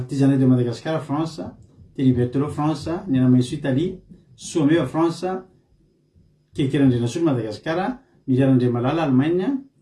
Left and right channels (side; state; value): both; identical; correlation 1.00